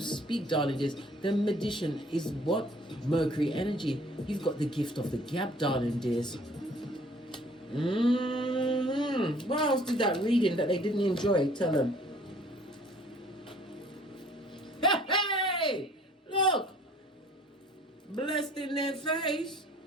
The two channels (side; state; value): both; normal; correlation 0.55